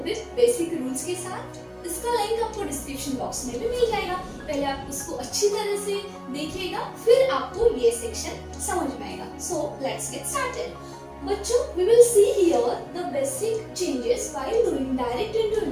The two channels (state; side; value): identical; both; correlation 1.00